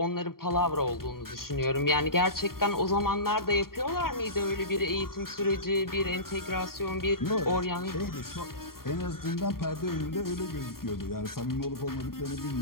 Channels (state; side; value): late; right; 0.93 ms